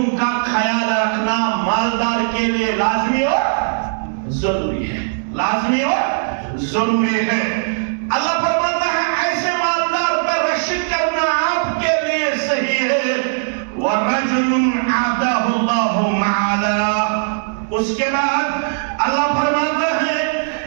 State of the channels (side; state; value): left; silent; digital silence